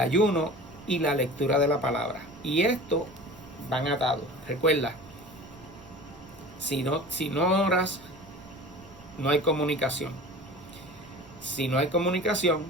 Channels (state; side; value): noise; right; rumble, 22 dB below the sound